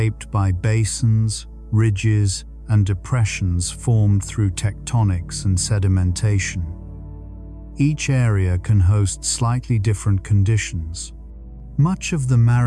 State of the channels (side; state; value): both; identical; correlation 1.00